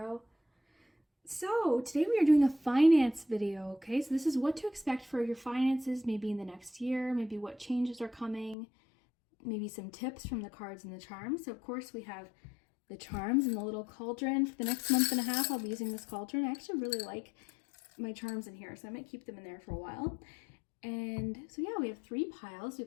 So today we are doing a finance video, okay? So this is what to expect for your finances maybe in the next year, maybe what changes are coming, maybe some tips from the cards and the charms. So of course we have the charms and the little cauldron. For the next month and a half I'll be using this cauldron. I actually really like my charms in here, so I might keep them in there for a while. And so yeah, we have 3 piles.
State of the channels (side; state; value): right; drops out; at 8.6 s